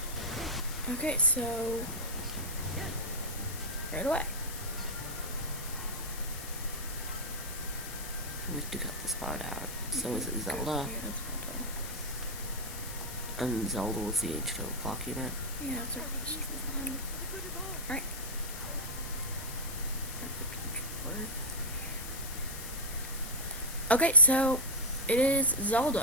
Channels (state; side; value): noise; left; hiss, 10 dB below the sound